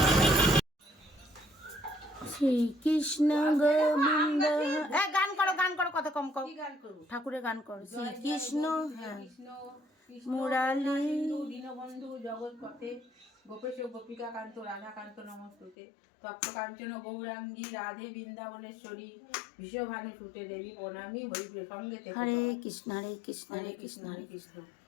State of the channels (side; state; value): right; drops out; at 15.8 s